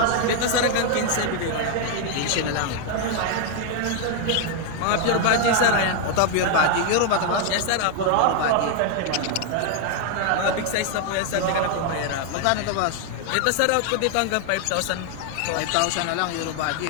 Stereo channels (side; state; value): both; different; correlation 0.01